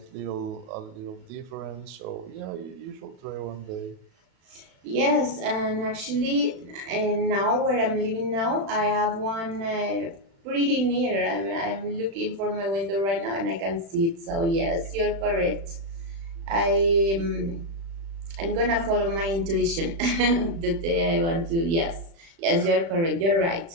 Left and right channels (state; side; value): late; left; 36 ms